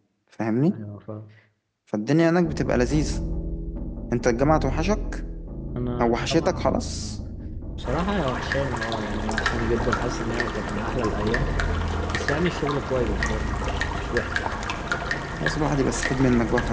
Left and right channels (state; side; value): identical; both; correlation 1.00